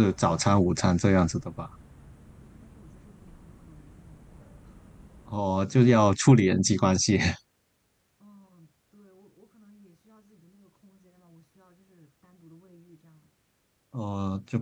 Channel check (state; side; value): identical; both; correlation 1.00